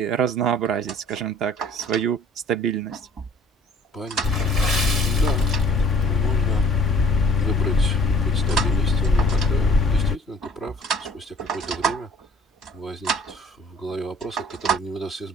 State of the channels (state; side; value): normal; both; correlation 0.53